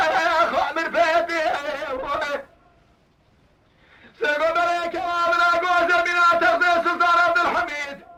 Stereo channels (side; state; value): both; identical; correlation 1.00